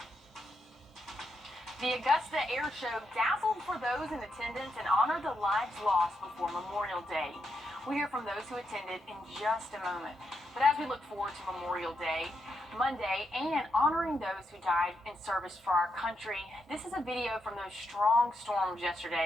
The Augusta Air Show dazzled for those in attendance and honored the lives lost before Memorial Day. We'll hear from those who attended in just a moment. But as we look forward to Memorial Day, Monday, and honoring those who died in service for our country, this is a video from those strong storms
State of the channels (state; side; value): normal; both; correlation 0.82